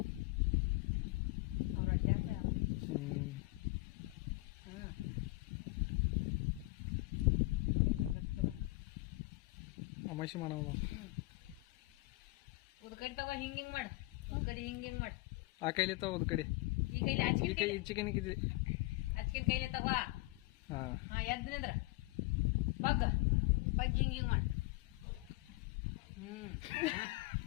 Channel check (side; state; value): right; quieter; 21.9 dB